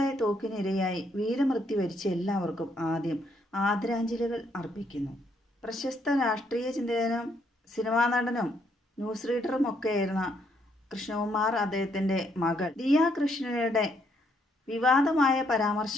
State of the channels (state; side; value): normal; both; correlation 0.72